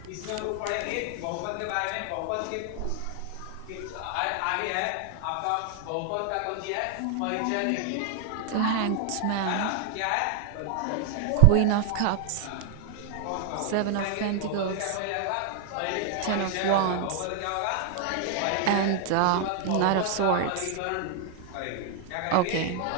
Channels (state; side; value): different; both; correlation 0.00